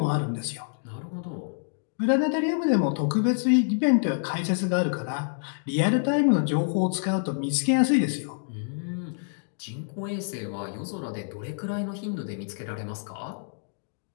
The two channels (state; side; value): silent; right; digital silence